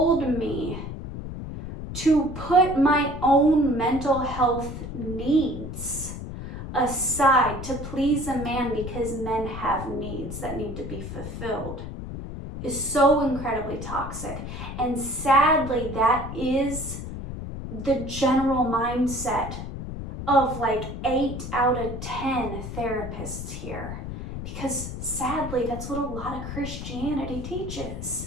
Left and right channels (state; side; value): noise; left; rumble, 8 dB below the sound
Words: me to put my own mental health needs aside to please a man because men have needs that need to be fulfilled is so incredibly toxic. And sadly, that is the general mindset of like 8 out of 10 therapists here. Because sadly, that's what a lot of Christianity